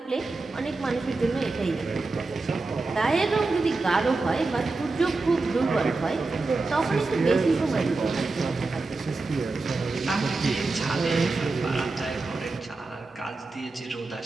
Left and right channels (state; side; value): quieter; left; 3.6 dB